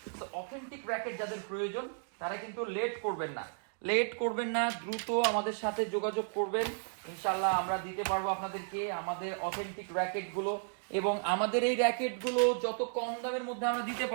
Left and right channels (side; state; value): left; silent; digital silence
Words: তো অথেন্টিক র্যাকেট যাদের প্রয়োজন তারা কিন্তু লেট করবেন না, দ্রুত আমাদের সাথে যোগাযোগ করবেন, ইনশাআল্লাহ আমরা দিতে পারবো আপনাদেরকে আমাদের অথেন্টিক র্যাকেট গুলো। এবং আমাদের এই র্যাকেট গুলো যত কম দামের মধ্যে আমরা দিতে